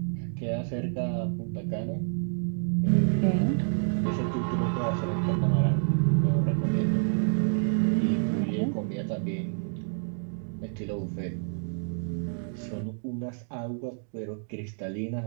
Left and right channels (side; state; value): left; silent; digital silence